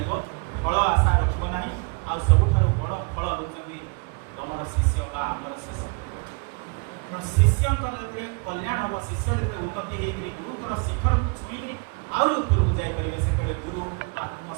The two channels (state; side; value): quieter; left; 33.4 dB